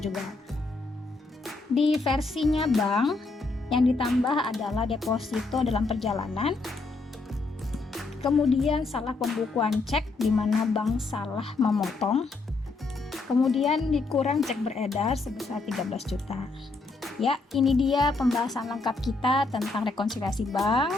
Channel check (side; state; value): right; quieter; 3.6 dB